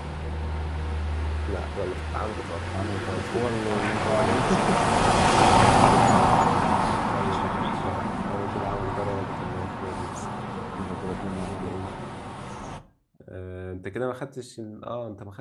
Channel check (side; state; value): both; identical; correlation 1.00